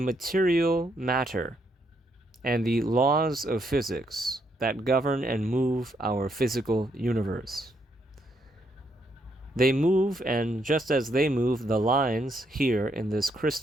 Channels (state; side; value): normal; both; correlation 0.75